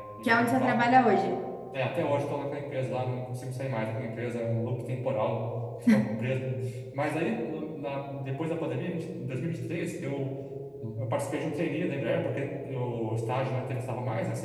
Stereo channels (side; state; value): both; identical; correlation 1.00